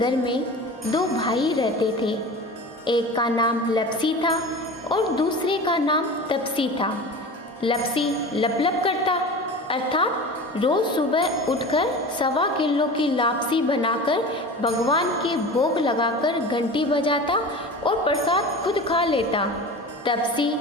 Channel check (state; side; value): normal; both; correlation 0.34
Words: में दो भाई रहते थे। एक का नाम लपसी था और दूसरे का नाम तपसी था। लपसी लप लप करता अर्थात रोज सुबह उठकर 1.25 किलो की लापसी बनाकर भगवान के भोग लगाकर घंटी बजाता और प्रसाद खुद खा लेता। तपसी